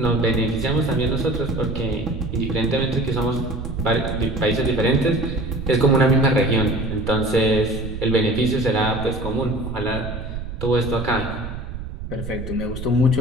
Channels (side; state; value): right; noise; rumble, 8 dB below the sound